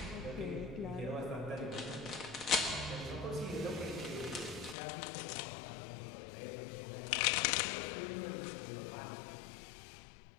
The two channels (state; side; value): drops out; right; at 4.8 s